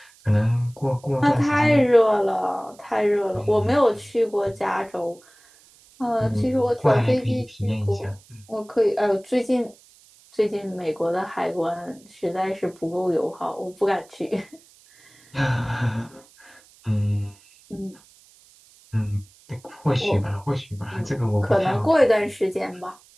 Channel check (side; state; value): right; noise; hiss, 27 dB below the sound